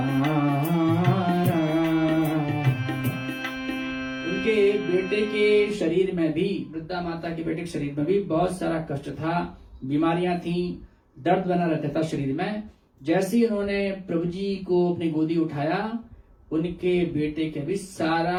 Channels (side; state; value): both; identical; correlation 1.00